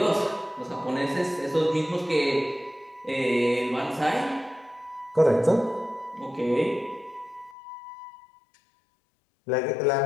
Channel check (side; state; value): right; drops out; at 7.6 s